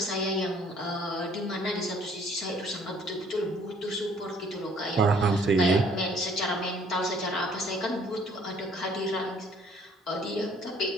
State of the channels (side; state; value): both; normal; correlation 0.59